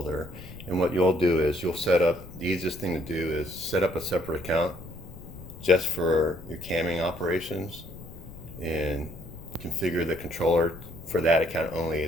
And what you'll do is you'll set up, the easiest thing to do is set up a separate account just for your camming operations and configure the controller for that account only,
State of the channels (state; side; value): noise; left; rumble, 15 dB below the sound